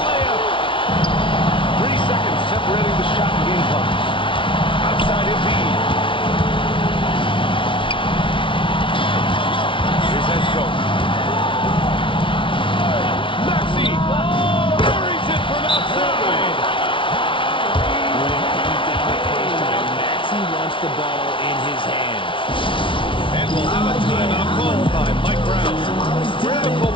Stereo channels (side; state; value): right; late; 0.25 ms